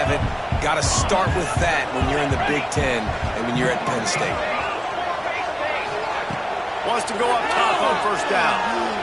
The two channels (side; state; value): both; identical; correlation 1.00